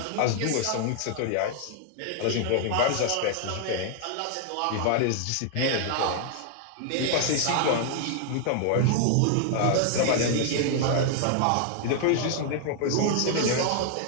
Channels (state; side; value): different; both; correlation 0.00